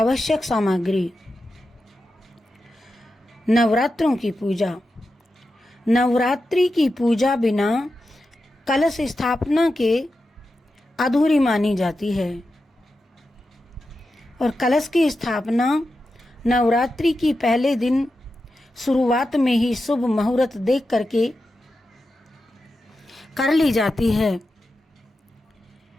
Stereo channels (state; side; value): normal; both; correlation 0.90